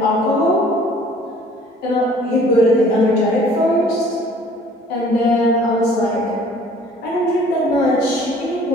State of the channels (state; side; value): normal; both; correlation 0.53